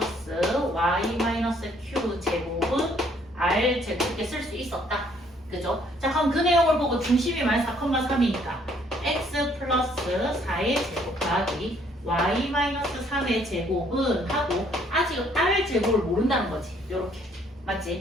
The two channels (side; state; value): both; normal; correlation 0.64